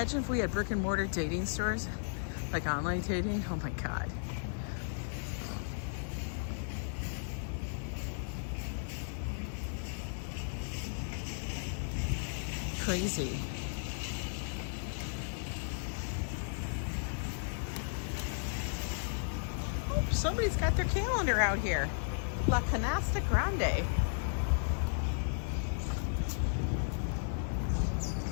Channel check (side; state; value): right; silent; 54 dB below the other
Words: if we had brick and mortar dating stores, like online dating. Oh my God. Crazy. Oh, somebody's got their calendar out here. La Canasta Grande.